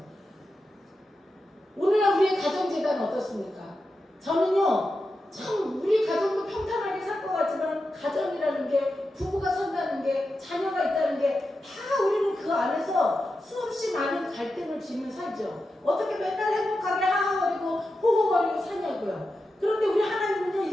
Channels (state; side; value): normal; both; correlation 0.90